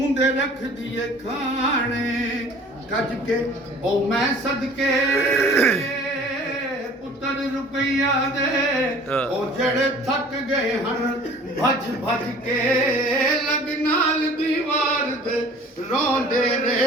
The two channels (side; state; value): both; normal; correlation 0.48